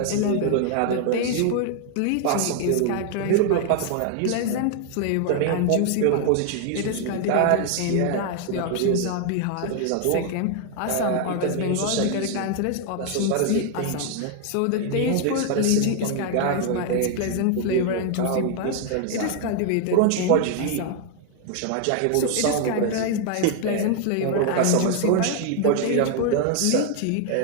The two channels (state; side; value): different; both; correlation 0.00